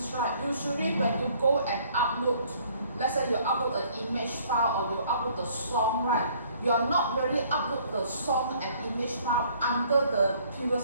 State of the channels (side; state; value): both; inverted; correlation -0.60